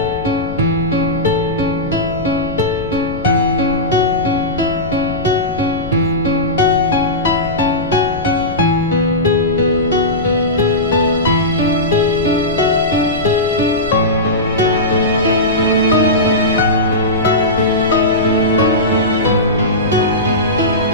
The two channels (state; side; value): noise; left; rumble, 12 dB below the sound